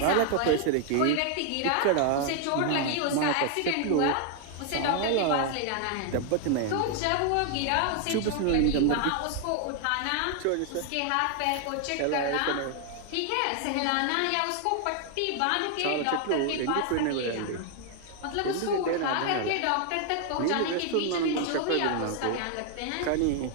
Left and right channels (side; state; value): both; different; correlation 0.00